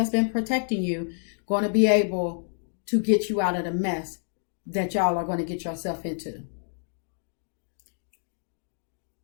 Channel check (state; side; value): silent; right; digital silence